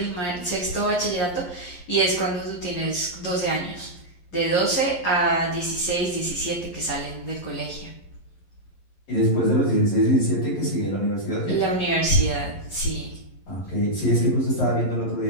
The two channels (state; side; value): late; right; 11 ms